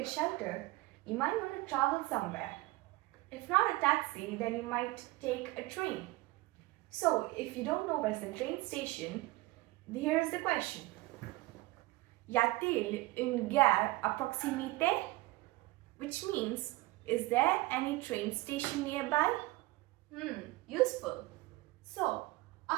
a shelter, you might want to travel somewhere. If not a taxi, then you might take a train. So, if you don't know where's the train station, here's the question. Y a-t-il une gare à proximité? Which means, is there any train station nearby? Useful. So,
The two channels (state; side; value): quieter; left; 20.3 dB